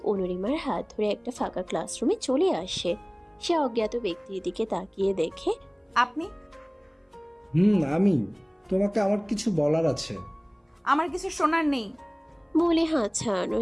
অনুরিমার হাত ধরে একটা ফাঁকা ক্লাসরুমে চলে আসে। সে অজ্ঞাত ব্যক্তির দিকে তাকিয়ে দেখে, আপনি? আমি। তোমাকে আমার কিছু বলার আছে। আমার কিছু শোনার নেই বলে হাত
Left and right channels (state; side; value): identical; both; correlation 1.00